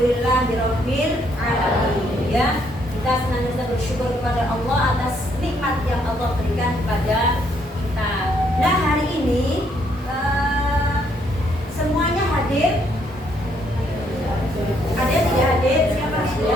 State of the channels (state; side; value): normal; both; correlation 0.70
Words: Alhamdulillahirabbil alamin. Ya, kita senantiasa bersyukur kepada Allah atas nikmat yang Allah berikan kepada kita. Nah, hari ini semuanya hadir. Ada yang tidak hadir? Siapa?